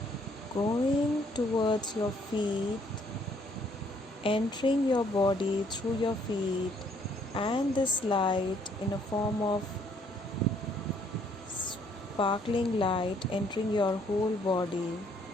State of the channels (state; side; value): normal; both; correlation 0.65